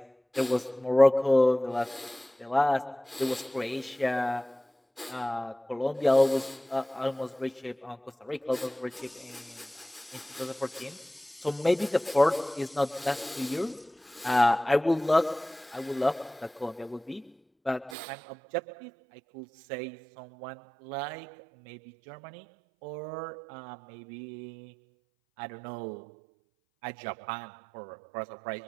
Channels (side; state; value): left; drops out; at 17.9 s